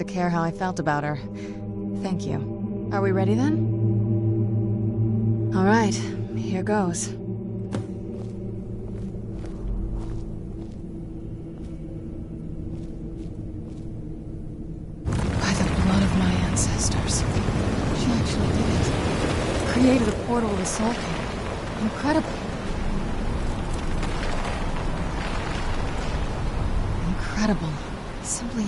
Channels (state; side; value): identical; both; correlation 1.00